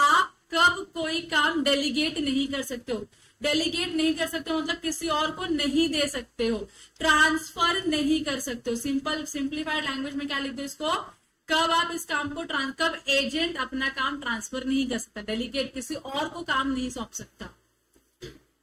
कब कोई काम डेलीगेट नहीं कर सकते हो। डेलीगेट नहीं कर सकते हो मतलब किसी और को नहीं दे सकते हो, ट्रांसफर नहीं कर सकते हो। सिंप्लीफाइड लैंग्वेज में क्या लिख दो इसको, कब आप इस काम को कब एजेंट अपना काम ट्रांसफर नहीं कर सकता, डेलीगेट किसी और को काम नहीं सौंप सकता।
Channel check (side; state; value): both; identical; correlation 1.00